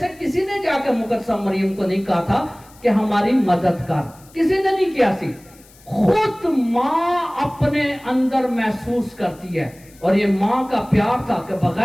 کسی نے جا کے مقدسہ مریم کو نہیں کہا تھا کہ ہماری مدد کر، کسی نے نہیں کیا سی. خود ماں اپنے اندر محسوس کرتی ہے، اور یہ ماں کا پیار تھا کہ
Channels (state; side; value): noise; left; hiss, 26 dB below the sound